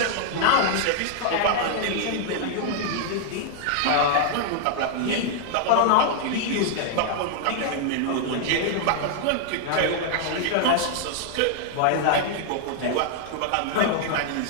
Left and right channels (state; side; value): different; both; correlation 0.00